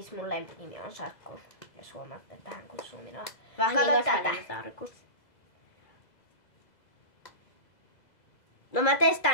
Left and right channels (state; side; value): late; right; 2.0 ms